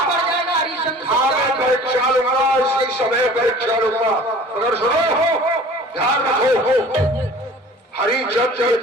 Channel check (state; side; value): normal; both; correlation 0.46